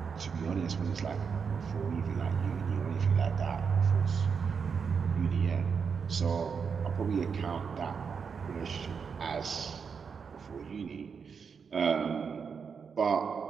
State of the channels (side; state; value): left; quieter; 6.1 dB